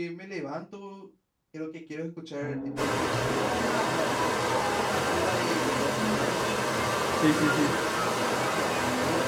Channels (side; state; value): both; identical; correlation 1.00